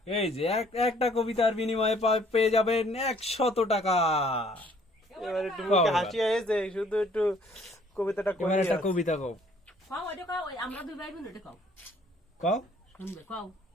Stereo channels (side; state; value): both; normal; correlation 0.60